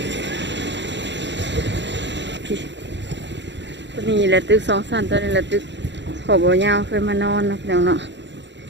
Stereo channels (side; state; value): left; late; 0.52 ms